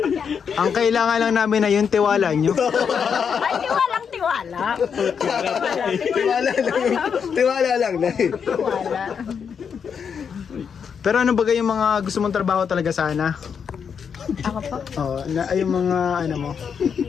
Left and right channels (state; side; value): quieter; right; 6.8 dB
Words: Ang kailangan lang namin na yung tiwala nyo. Ay, tiwalang tiwala. Tiwala lang. Tiwala lang, Nay. Tiwala. Pero ano ba yung mga gusto mong trabaho talaga sana? Ako po. Oo, yung mga ano mo.